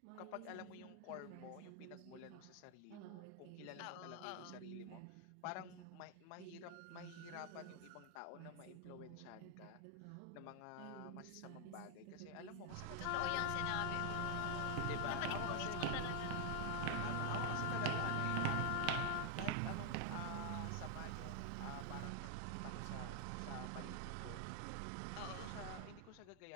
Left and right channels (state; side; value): different; both; correlation 0.00